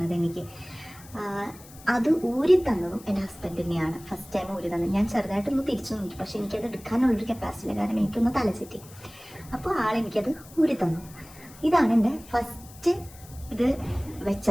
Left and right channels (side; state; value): left; noise; hiss, 21 dB below the sound